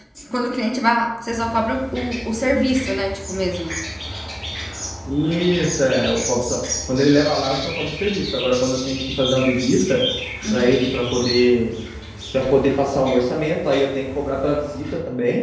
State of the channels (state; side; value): identical; both; correlation 1.00